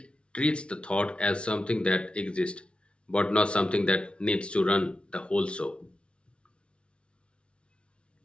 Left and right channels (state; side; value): late; right; 0.059 ms